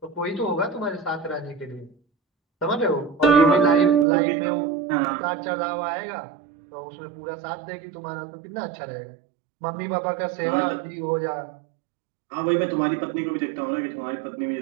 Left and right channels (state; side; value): drops out; left; at 4.0 s